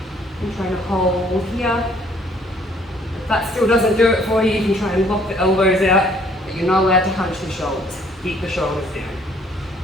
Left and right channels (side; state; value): both; normal; correlation 0.61